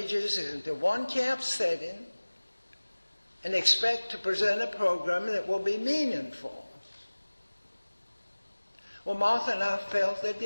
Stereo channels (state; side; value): inverted; both; correlation -1.00